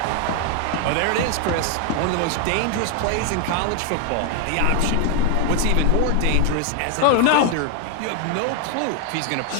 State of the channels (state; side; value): different; both; correlation 0.00